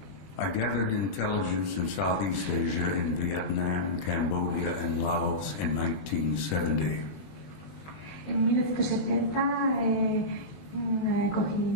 I gathered intelligence in Southeast Asia in Vietnam, Cambodia, and Laos in 1970. En 1970 cogí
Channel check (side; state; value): right; late; 20 ms